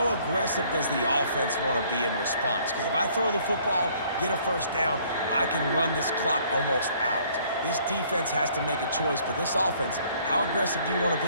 aggressive does the offense want to be in response? Because if I throw the football, get a first down, I can run this clock almost out. This defense has to make a choice, but this offense, how aggressive do you want to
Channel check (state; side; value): inverted; both; correlation -0.60